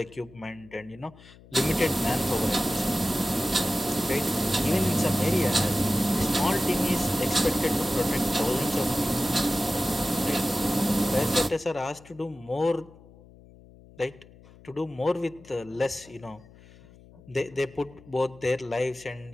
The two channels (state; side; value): noise; left; hum, 23 dB below the sound